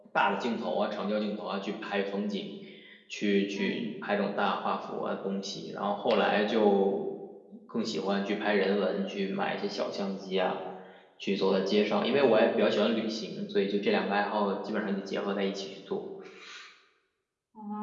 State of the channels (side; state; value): both; identical; correlation 1.00